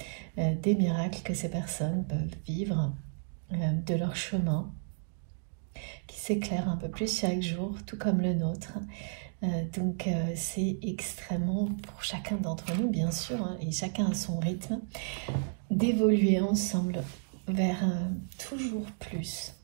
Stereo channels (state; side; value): silent; left; digital silence